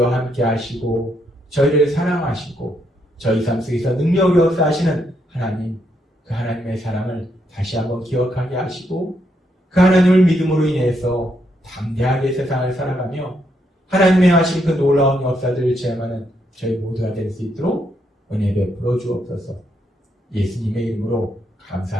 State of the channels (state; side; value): normal; both; correlation 0.77